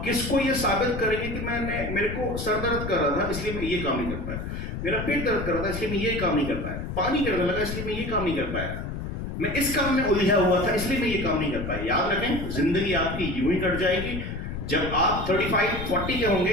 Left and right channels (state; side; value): noise; left; rumble, 6 dB below the sound